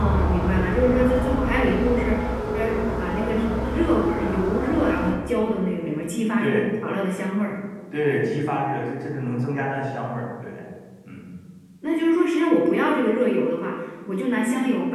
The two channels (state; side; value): identical; both; correlation 1.00